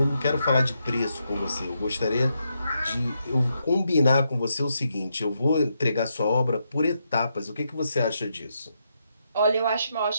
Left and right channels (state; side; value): inverted; both; correlation -0.81